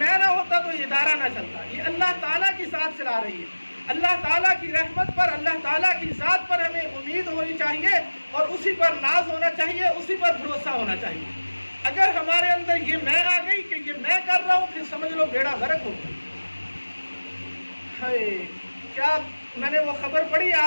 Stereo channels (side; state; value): both; inverted; correlation -1.00